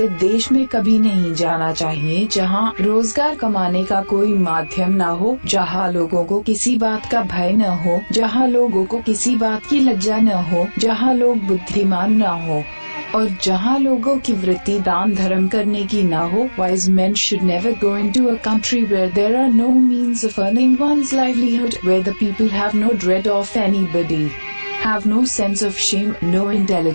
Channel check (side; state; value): both; inverted; correlation -1.00